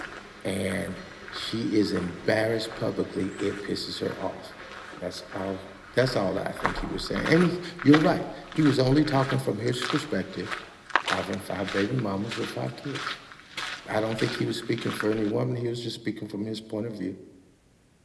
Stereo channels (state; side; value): identical; both; correlation 1.00